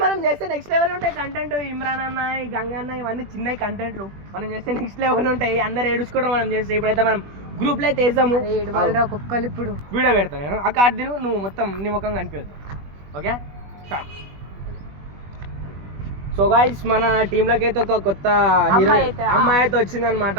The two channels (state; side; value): late; left; 21 ms